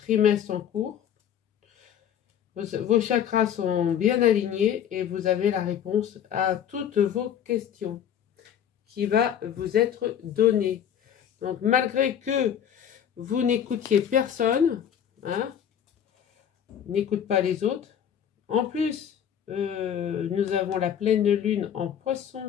en cours. Vos chakras sont bien alignés et vous avez la réponse à toutes vos questions qui va vous être donnée. Donc malgré que vous n'écoutiez personne, hein, n'écoute pas les autres. En plus, nous avons la pleine lune en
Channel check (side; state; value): right; quieter; 9.2 dB